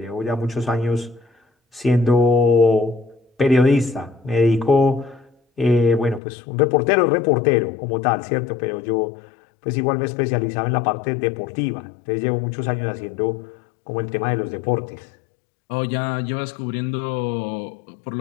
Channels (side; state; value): right; drops out; at 6.2 s